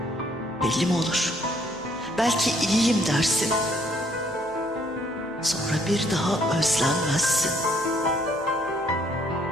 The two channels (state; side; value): noise; left; hum, 30 dB below the sound